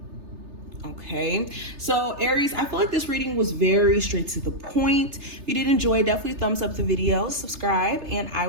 Okay, so Aries, I feel like this reading was very straight to the point. If you did enjoy, definitely thumbs up the video, subscribe, and I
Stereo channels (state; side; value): late; left; 3.3 ms